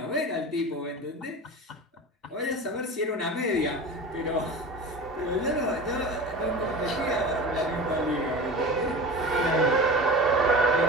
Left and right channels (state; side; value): normal; both; correlation 0.32